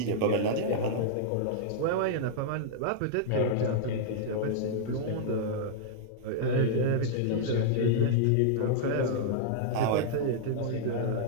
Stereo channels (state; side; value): different; both; correlation -0.02